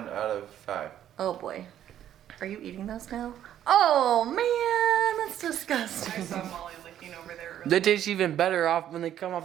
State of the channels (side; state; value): left; quieter; 11.0 dB